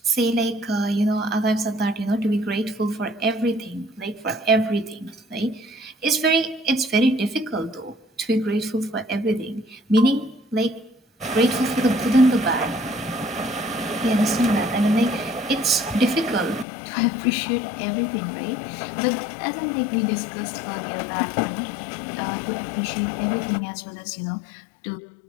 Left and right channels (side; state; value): right; drops out; at 16.7 s